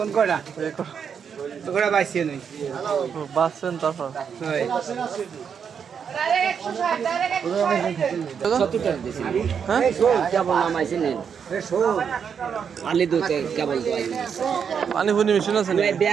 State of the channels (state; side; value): quieter; left; 7.1 dB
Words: কয়টা এই কটা ওগুলা বাইছে নই বাঁচছেন তারপর হয় 70 টাকা দিয়েছি। হ্যাঁ কেবল নামাইছি নেন আলি দুতে কেবল দোয়াই পানি ফুনি মেশিন আছে নাকি?